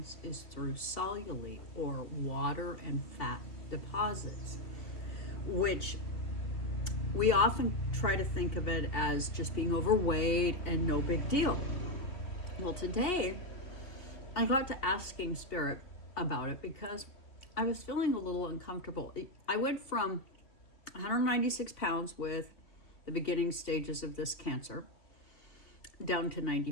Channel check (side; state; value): right; late; 2.8 ms